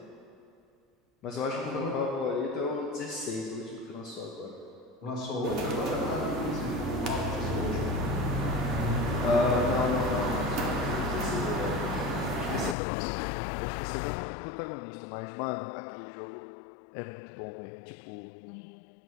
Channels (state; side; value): drops out; right; at 12.8 s